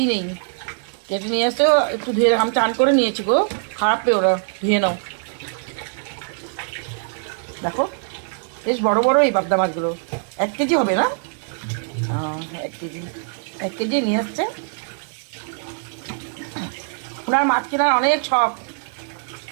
নেই। কেটে নিয়ে আসছে, একটু ধুয়ে আমি টান করে নিয়েছি গো, খারাপ পেয়ে ওরা, ধুয়ে নাও। দেখো বেশ বড় বড় এই পাবদা মাছগুলো, 1 কেজি হবে না? 1 কেজি, 1 কেজি নিয়ে আসছে। ওনার মাছ কেনার অনেক শখ,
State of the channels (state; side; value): silent; left; digital silence